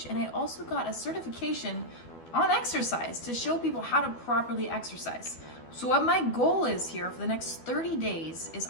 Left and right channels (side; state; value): right; late; 12 ms